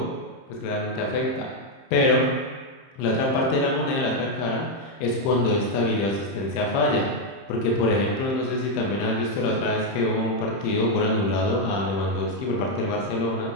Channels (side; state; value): right; late; 30 ms